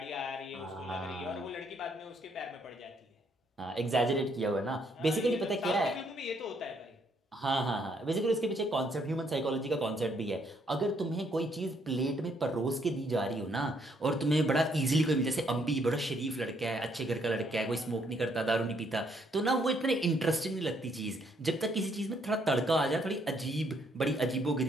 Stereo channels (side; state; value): both; normal; correlation 0.70